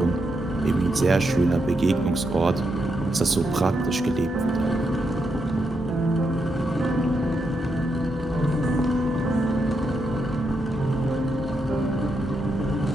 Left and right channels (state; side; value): normal; both; correlation 0.82